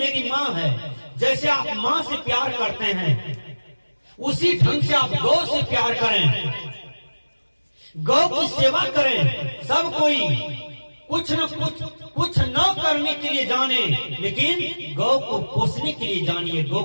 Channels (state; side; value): inverted; both; correlation -1.00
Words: माँ है, जैसे आप माँ से प्यार करते हैं उसी ढंग से आप गौ से प्यार करें, गौ की सेवा करें। सब कोई कुछ न करने के लिए जाने, लेकिन गौ को पोसने के लिए जानिए, गौ